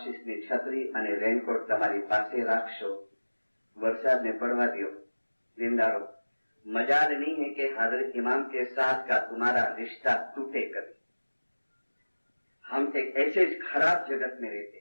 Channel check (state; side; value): inverted; both; correlation -1.00